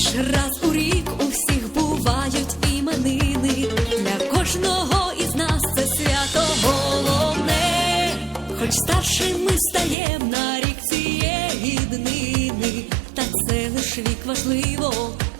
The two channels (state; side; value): drops out; left; at 10.0 s